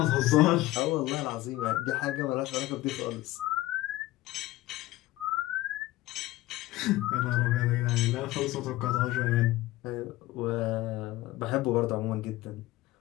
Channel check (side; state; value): right; quieter; 17.3 dB